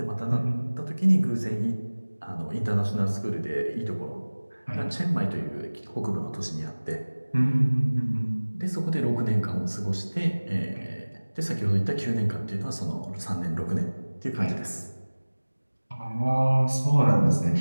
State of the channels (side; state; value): both; inverted; correlation -1.00